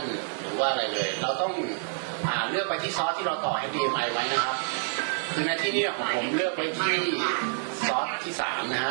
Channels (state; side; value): silent; left; digital silence